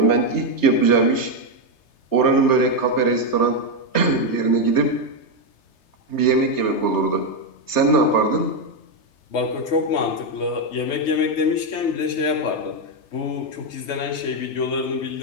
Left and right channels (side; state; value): right; late; 3.3 ms